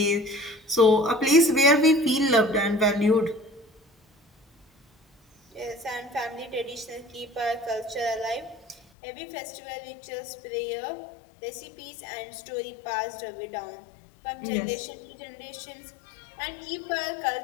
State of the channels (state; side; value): drops out; right; at 8.8 s